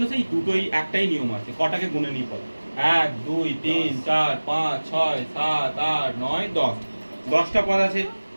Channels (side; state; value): both; inverted; correlation -1.00